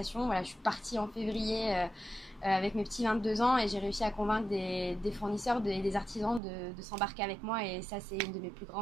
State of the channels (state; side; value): drops out; left; at 6.4 s